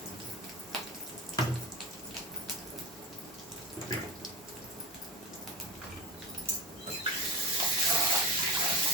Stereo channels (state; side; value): normal; both; correlation 0.28